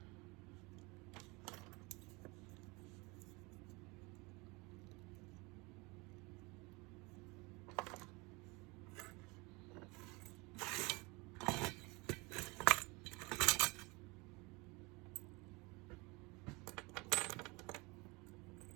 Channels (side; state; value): left; quieter; 26.2 dB